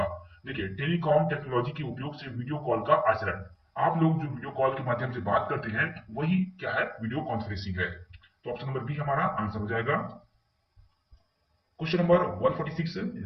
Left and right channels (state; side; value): identical; both; correlation 1.00